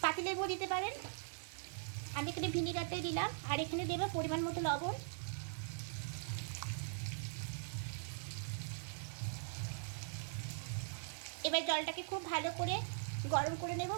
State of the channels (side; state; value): left; silent; digital silence